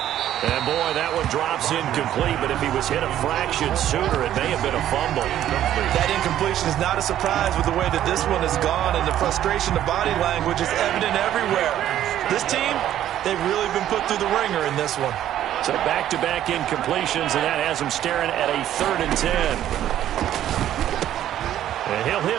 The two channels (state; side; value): quieter; left; 11.8 dB